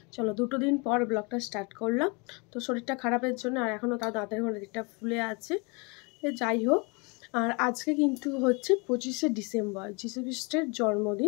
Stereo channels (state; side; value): quieter; right; 30.5 dB